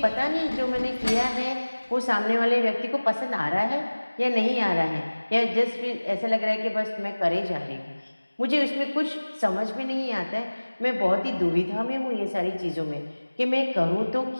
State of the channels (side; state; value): both; inverted; correlation -1.00